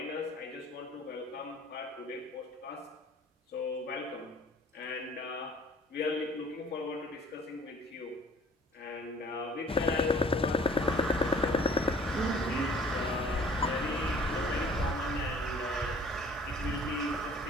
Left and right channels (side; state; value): both; normal; correlation 0.52